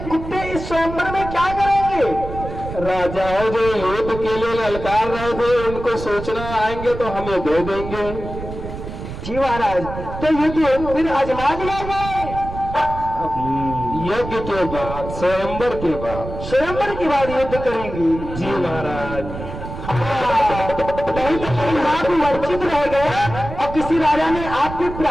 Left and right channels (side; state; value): right; noise; rumble, 9 dB below the sound